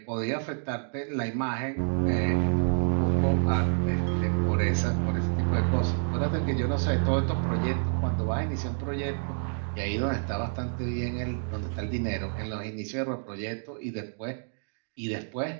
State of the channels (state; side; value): silent; left; digital silence